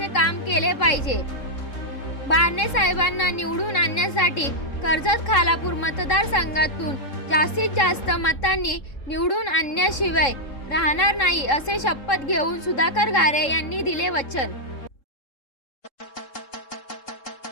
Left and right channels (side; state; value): right; late; 3.7 ms